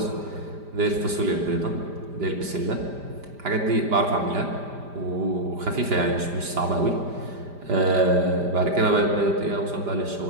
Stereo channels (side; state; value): left; late; 5.0 ms